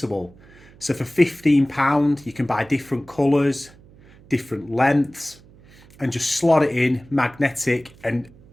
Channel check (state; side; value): noise; right; hum, 25 dB below the sound